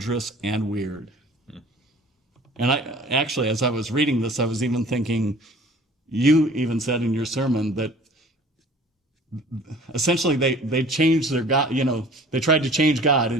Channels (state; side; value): normal; both; correlation 0.48